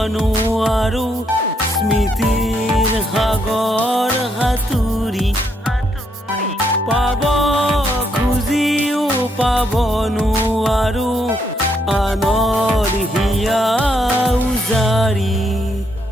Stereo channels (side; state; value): both; normal; correlation 0.75